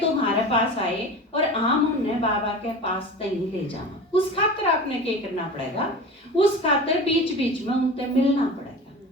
हमारे पास आए और हम उन्हें बाबा के पास नहीं ले जाना, उस खातिर आपने क्या करना पड़ेगा, उस खातिर बीच बीच में उनसे मिलना पड़ेगा,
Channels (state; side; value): normal; both; correlation 0.34